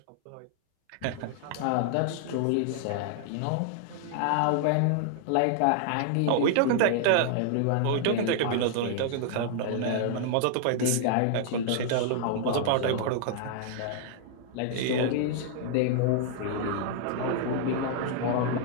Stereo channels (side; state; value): both; different; correlation 0.00